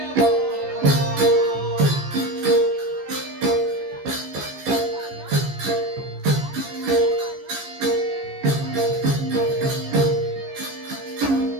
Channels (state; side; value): late; left; 15 ms